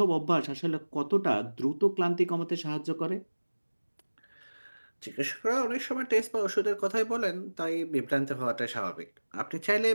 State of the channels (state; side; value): inverted; both; correlation -1.00